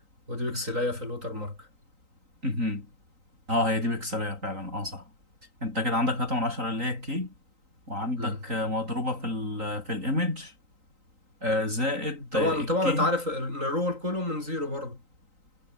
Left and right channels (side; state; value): left; late; 3.9 ms